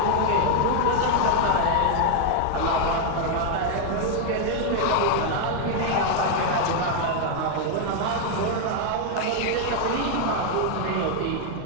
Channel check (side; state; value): both; different; correlation 0.00